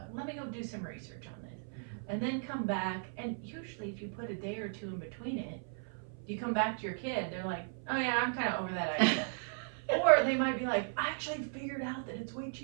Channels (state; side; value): silent; left; 54 dB below the other